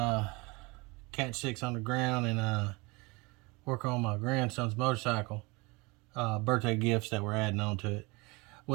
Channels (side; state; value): left; quieter; 25.9 dB